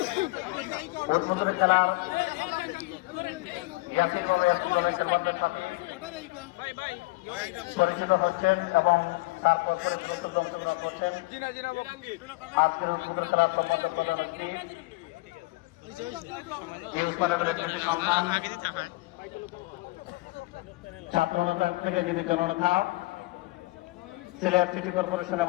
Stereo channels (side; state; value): right; quieter; 23.5 dB